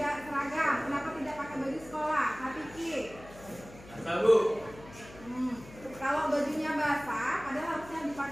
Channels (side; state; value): left; noise; hum, 19 dB below the sound